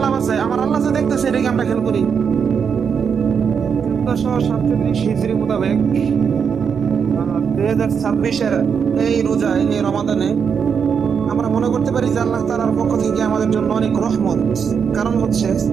লাভ আছে? আমার আল্লাহ যে দেখতেছে এটাকে আমরা খেয়াল করি। 1447 হিজরি মোতাবেক 2026-এর এই রোজা, এই রমাদানে আমরা মনে করতে পারি যে আল্লাহ তাআলার পক্ষ থেকে আমাদের জন্য অনেক রহমত। কারণ হচ্ছে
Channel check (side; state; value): left; quieter; 6.7 dB